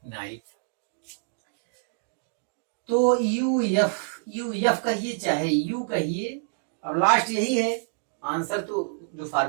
तो यू एफ कहिए चाहे यू कहिए, अब लास्ट यही है आंसर। तो जो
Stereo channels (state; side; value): silent; left; digital silence